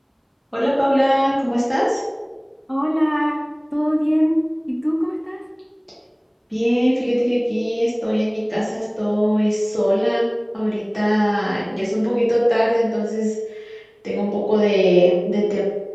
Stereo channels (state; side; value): identical; both; correlation 1.00